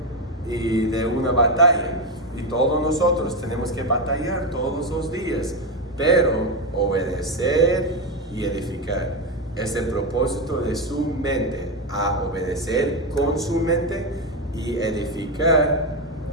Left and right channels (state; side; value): normal; both; correlation 0.10